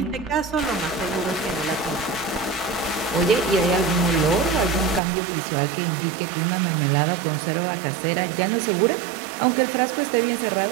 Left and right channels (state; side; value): drops out; left; at 5.0 s